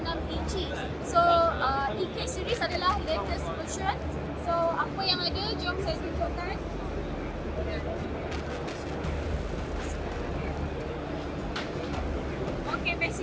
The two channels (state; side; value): identical; both; correlation 1.00